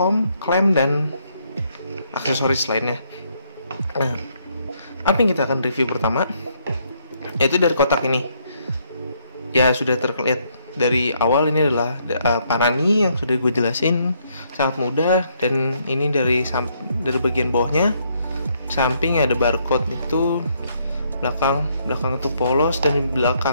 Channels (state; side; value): inverted; both; correlation -0.72